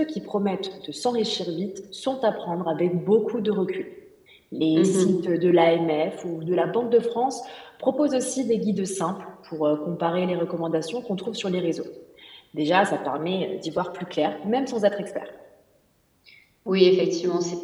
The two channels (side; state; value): both; identical; correlation 1.00